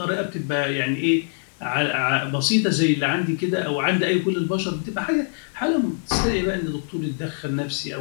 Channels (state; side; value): silent; right; digital silence